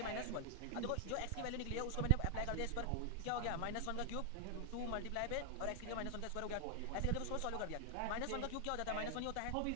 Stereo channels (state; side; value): different; both; correlation 0.00